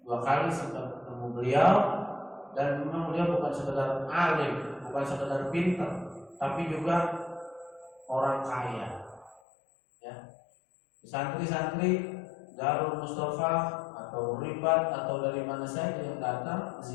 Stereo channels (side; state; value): right; drops out; at 9.4 s